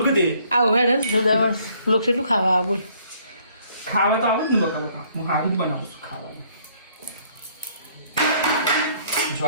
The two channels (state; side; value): inverted; both; correlation -0.63